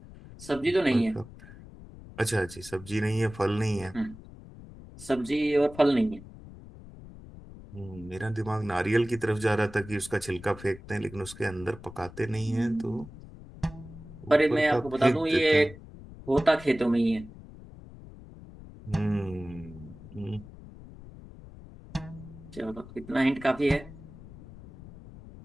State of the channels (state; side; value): noise; left; rumble, 17 dB below the sound